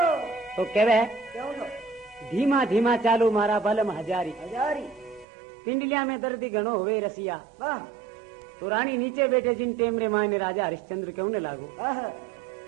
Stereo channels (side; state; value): left; drops out; at 5.2 s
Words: तो कहवे धीमा धीमा चालो मारा बलम हजारी। पिंडलिया में दर्दी गणो हुए रसिया। तो रानी नीचे बैठे जिन टेमरे मायने राजा हरिश्चंद्र क्यों ने लागो।